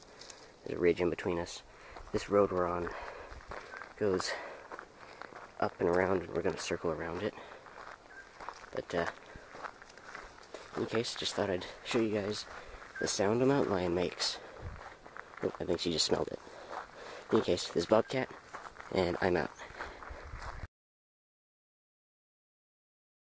There's a ridge in between us. This road we're on goes up and around, and we're going to circle around it. But, in any case, just thought I'd show you guys the sound a mountain lion makes. Oh, I think she just smelled it. In any case, this is Bobcat, and I'm out.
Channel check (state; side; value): identical; both; correlation 1.00